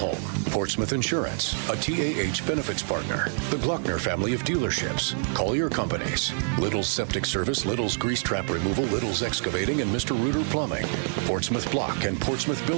Portsmouth Insurance, a TAH benefits partner, the Glockner family of dealerships, Collier Companies, Little's Septic Service, Little's Grease Trap Removal, Little's Excavating, and Mr. Reuter Plumbing, Portsmouth Block and Portsmouth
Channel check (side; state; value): left; silent; digital silence